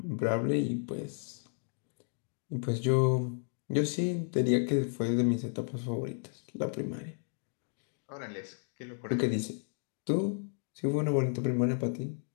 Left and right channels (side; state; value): right; silent; 56 dB below the other